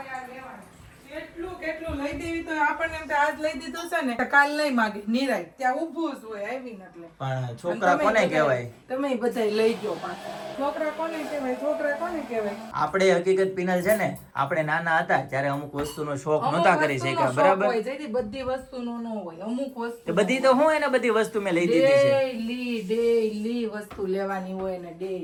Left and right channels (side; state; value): both; identical; correlation 1.00